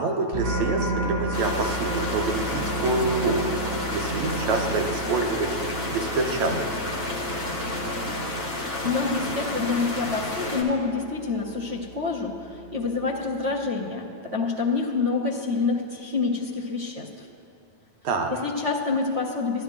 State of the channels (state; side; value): late; left; 9.1 ms